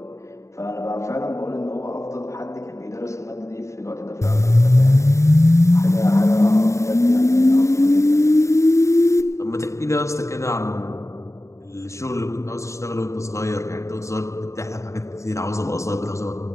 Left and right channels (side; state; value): right; late; 0.14 ms